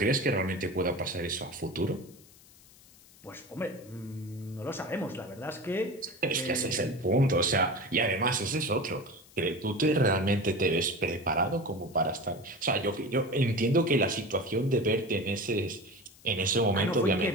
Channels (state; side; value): noise; left; hiss, 25 dB below the sound